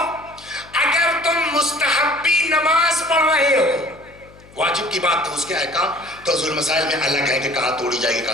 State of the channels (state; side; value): noise; left; hum, 24 dB below the sound